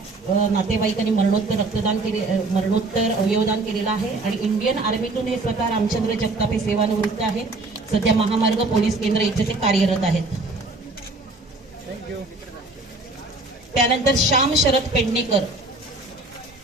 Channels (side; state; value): left; quieter; 3.1 dB